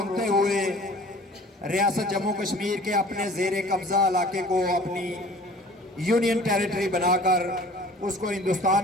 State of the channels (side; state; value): both; normal; correlation 0.47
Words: ہوئے ریاست جموں کشمیر کے اپنے زیر قبضہ علاقے کو اپنی یونین ٹیریٹری بنا کر اس کو